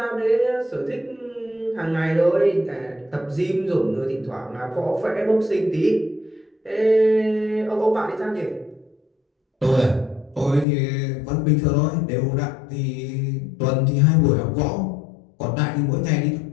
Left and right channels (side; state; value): right; drops out; at 10.7 s